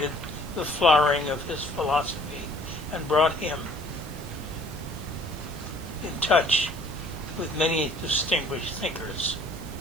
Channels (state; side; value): noise; right; hiss, 20 dB below the sound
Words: the flowering of his philosophy and brought him in touch with many distinguished thinkers.